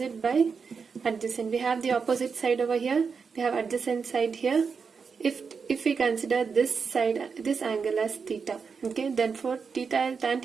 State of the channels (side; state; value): left; quieter; 5.6 dB